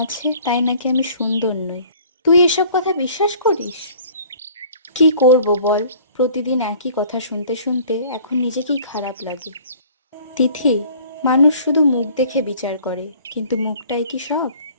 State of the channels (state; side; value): inverted; both; correlation -0.51